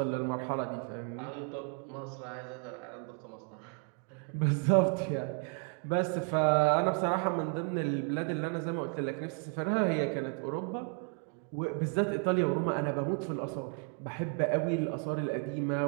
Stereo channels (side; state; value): left; quieter; 39.1 dB